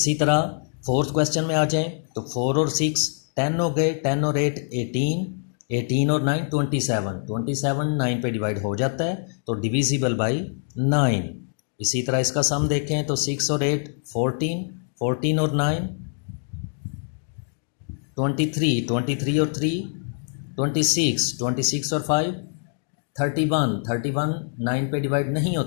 तरह फोर्थ क्वेश्चन में आ जाएं तो 4 और 6 10 हो गए, 10 और 8 18, 18 और 9 27। 27 9 पे डिवाइड हो जाता है, तो डिविजिबल बाय 9। इसी तरह इसका सम देखें तो 6 और 8 14, 14 और 9 23, 23 और 3 26, 26 और 5 31, 31 9 पे डिवाइड नहीं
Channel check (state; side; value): silent; right; digital silence